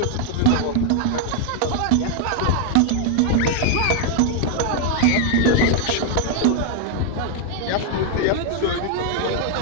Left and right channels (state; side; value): different; both; correlation 0.00